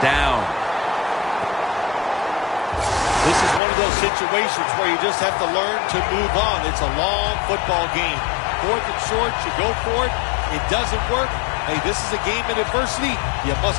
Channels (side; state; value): right; drops out; at 3.6 s